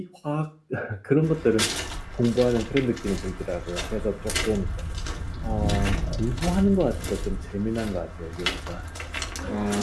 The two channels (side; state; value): both; identical; correlation 1.00